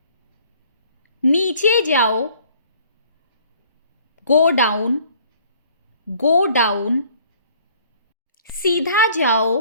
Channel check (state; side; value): inverted; both; correlation -0.56